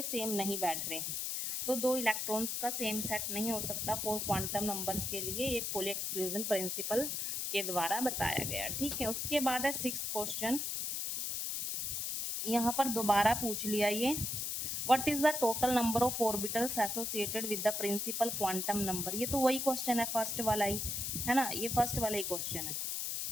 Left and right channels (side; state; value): left; noise; hiss, 2 dB below the sound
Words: सेम नहीं बैठ रहे, तो 2 इलेक्ट्रॉन्स का सेम सेट नहीं हो सकता 4 क्वांटम नंबर्स के लिए। ये पोली एक्सक्लूजन प्रिंसिपल के द्वारा बताया गया, ठीक है। उसके बाद है 6th क्वेश्चन। यहाँ पर दोबारा पूछ लिया ये, what is the total number of orbitals associated with the principal quantum number. ये तो वही क्वेश्चन है, फर्स्ट वाला ही है ना, ये फर्स्ट वाला ही क्वेश्चन है।